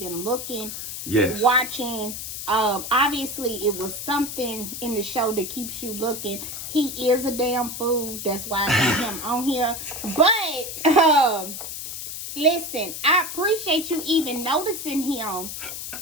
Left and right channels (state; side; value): noise; left; hiss, 7 dB below the sound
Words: looking, yes, watching. Obviously, it was something in the show that keeps you looking. He is a damn fool. That's why I got him on here. But, listen, I appreciate you even noticing him